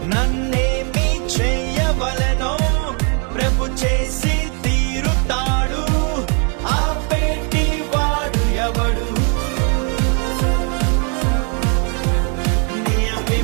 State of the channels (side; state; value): left; quieter; 38.7 dB